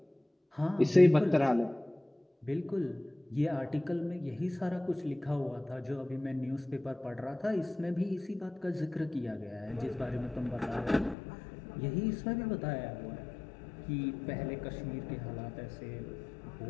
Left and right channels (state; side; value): drops out; right; at 11.2 s